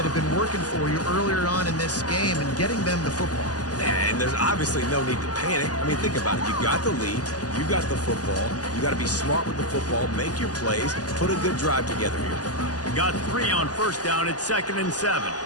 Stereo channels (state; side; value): late; right; 0.68 ms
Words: have been working for you earlier on in this game and getting them the football. And there's obviously no need to panic. I mean, think about it. You got the lead. You got the football. You got to be smart with the football. Make your plays. Put a good drive together here. Got 3 on 1st down. It's 2nd and 7.